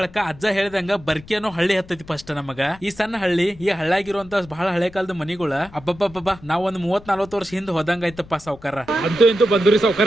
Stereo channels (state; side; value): noise; left; rumble, 21 dB below the sound